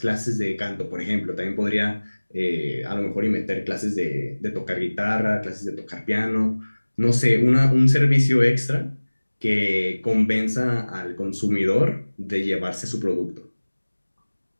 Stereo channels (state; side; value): inverted; both; correlation -1.00